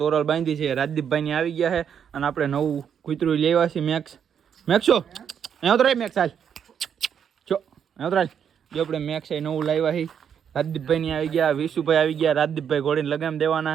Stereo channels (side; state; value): left; quieter; 8.0 dB